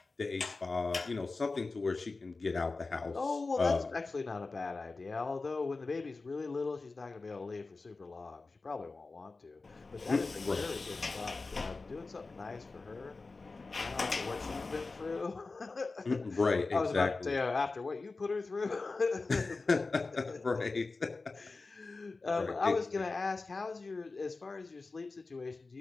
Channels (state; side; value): quieter; right; 3.8 dB